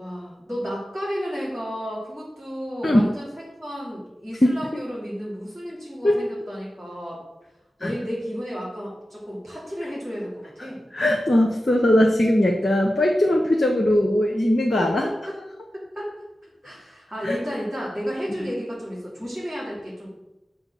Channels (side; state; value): both; normal; correlation 0.93